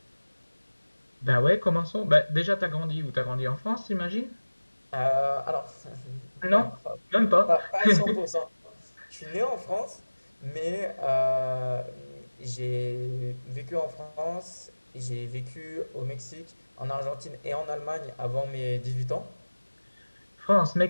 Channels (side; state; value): both; inverted; correlation -1.00